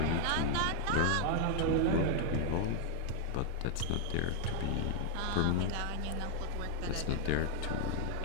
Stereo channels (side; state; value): both; different; correlation 0.00